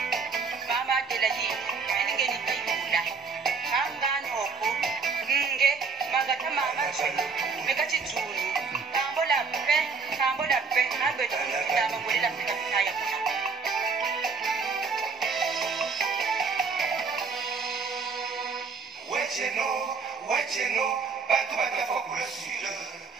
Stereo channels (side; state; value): left; quieter; 5.1 dB